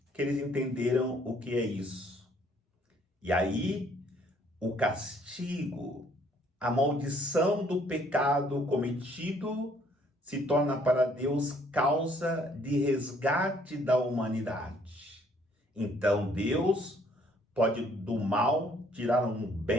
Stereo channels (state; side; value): normal; both; correlation 0.63